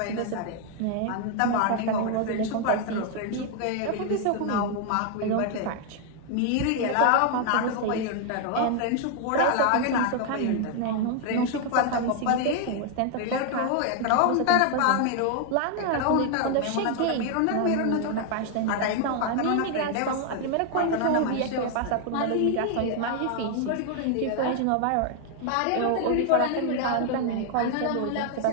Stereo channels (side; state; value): both; different; correlation 0.00